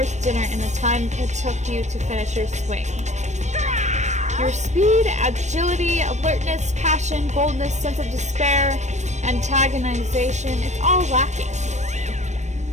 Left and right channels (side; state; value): left; late; 0.34 ms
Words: dinner in the time it took you to finish your swing. Your speed, agility, alertness, passion, boldness, sense of despair, antagonization, it's all lacking.